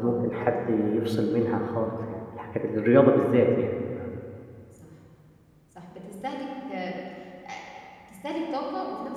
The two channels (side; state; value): both; identical; correlation 1.00